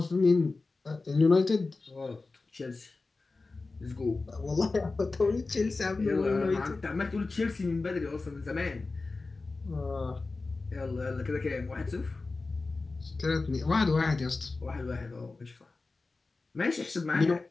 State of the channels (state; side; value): quieter; right; 3.7 dB